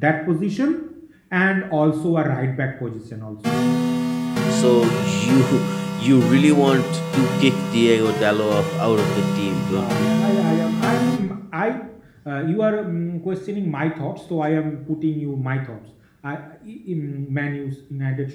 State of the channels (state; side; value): identical; both; correlation 1.00